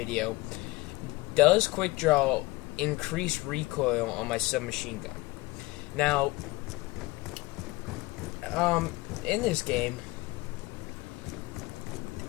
does quickdraw increase recoil on my submachine gun? Now, in this game,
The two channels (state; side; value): quieter; right; 21.5 dB